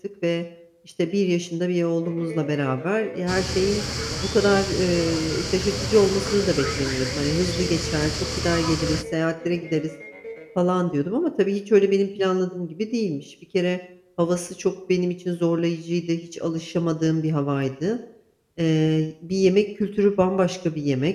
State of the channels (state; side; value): identical; both; correlation 1.00